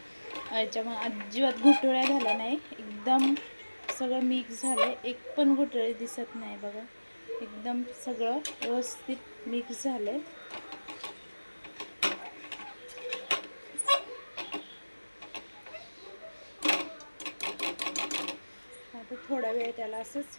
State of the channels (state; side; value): inverted; both; correlation -1.00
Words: याच्यामध्ये अजिबात गुठळ्या झाल्या नाही, एकदम सगळं मिक्स झालं. एक पण गुठळी दिसत नाही बघा, एकदम सगळं व्यवस्थित मिक्स झालं. आता थोडा वेळ त्याला असंच